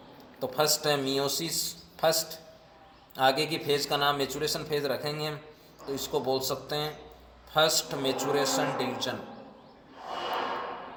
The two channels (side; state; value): both; identical; correlation 1.00